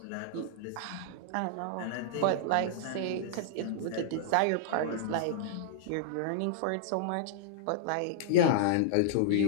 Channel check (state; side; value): different; both; correlation -0.02